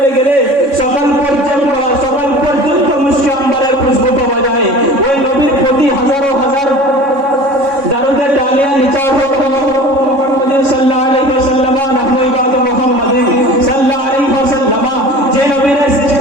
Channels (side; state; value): left; late; 3.6 ms